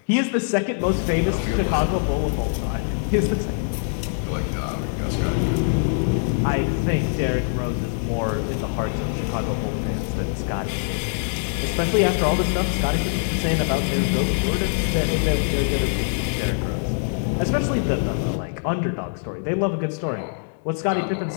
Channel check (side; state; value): right; silent; digital silence